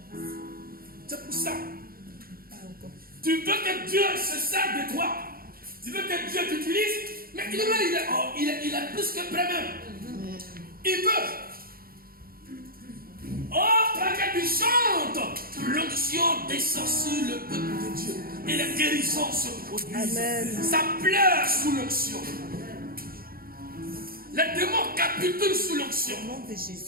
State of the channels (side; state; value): left; late; 0.43 ms